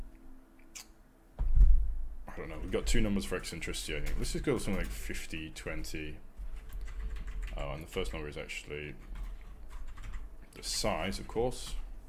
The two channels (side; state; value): both; identical; correlation 1.00